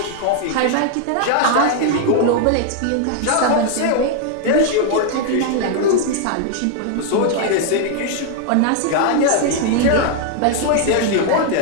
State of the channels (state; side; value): different; both; correlation 0.00